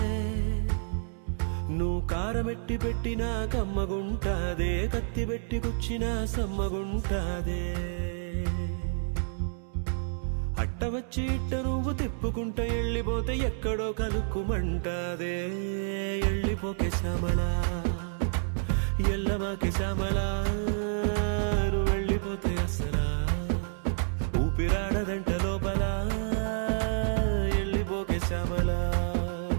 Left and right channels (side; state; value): left; silent; 58 dB below the other